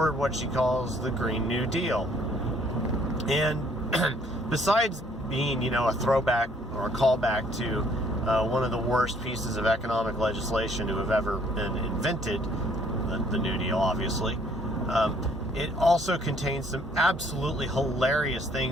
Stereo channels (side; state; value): both; normal; correlation 0.62